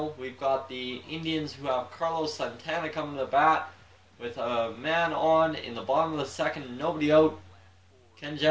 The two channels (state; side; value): identical; both; correlation 1.00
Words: we've got the Indians who have Carlos Santana coming to the bat with a man on in the bottom of the 2nd, nobody out. Can